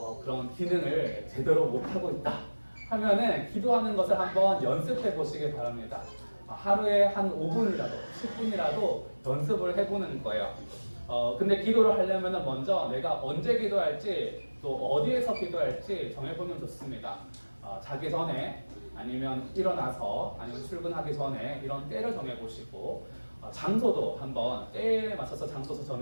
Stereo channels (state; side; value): inverted; both; correlation -1.00